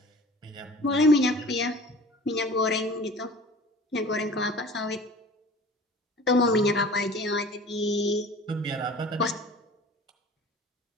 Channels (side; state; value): both; normal; correlation 0.44